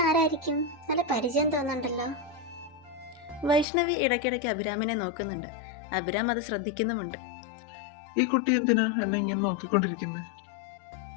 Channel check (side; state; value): right; drops out; at 3.7 s